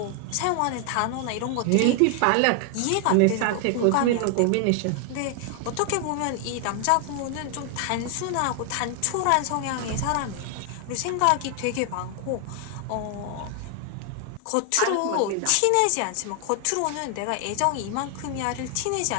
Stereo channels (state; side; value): different; both; correlation 0.00